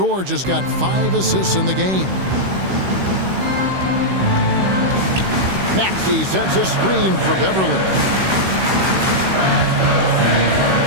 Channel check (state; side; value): late; left; 16 ms